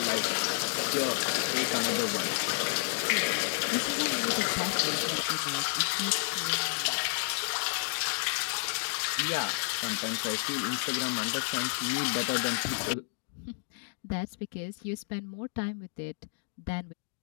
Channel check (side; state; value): right; silent; digital silence